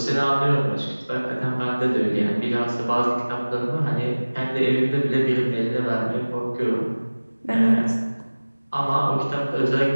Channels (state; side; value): inverted; both; correlation -1.00